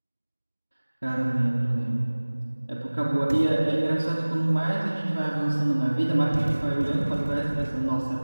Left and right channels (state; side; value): inverted; both; correlation -1.00